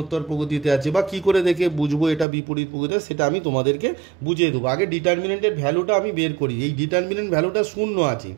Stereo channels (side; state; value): left; drops out; at 2.2 s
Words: প্রগতিতে আছে, বা কী করে দেখে বুঝবো এটা বিপরীত প্রগতিতে, সেটা আমি তোমাদেরকে বুঝিয়ে দেবো। আগে ডিটারমিনেন্টের ভ্যালুটা আমি বের করি। এই ডিটারমিনেন্ট ভ্যালুটা 0 আছে,